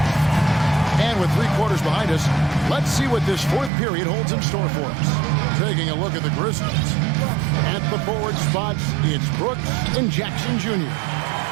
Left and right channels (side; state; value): left; drops out; at 3.7 s